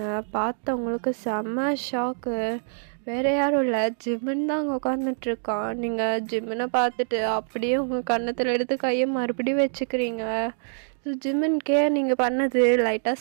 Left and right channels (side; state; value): left; silent; digital silence